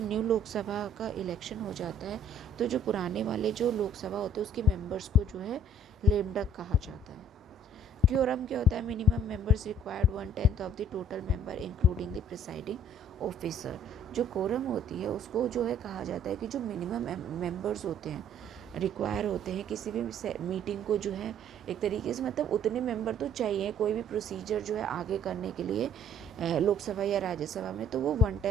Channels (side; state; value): both; normal; correlation 0.57